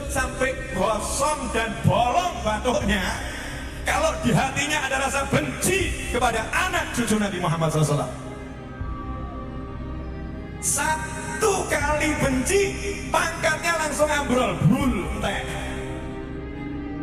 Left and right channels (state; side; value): identical; both; correlation 1.00